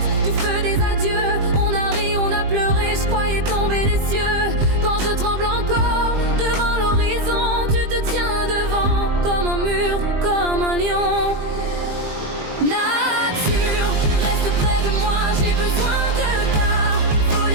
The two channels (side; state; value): left; late; 20 ms